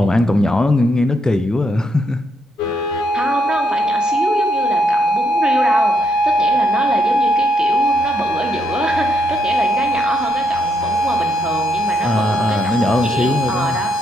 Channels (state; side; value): normal; both; correlation 0.77